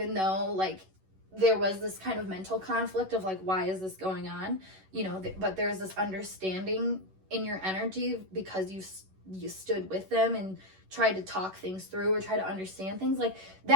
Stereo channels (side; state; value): left; late; 11 ms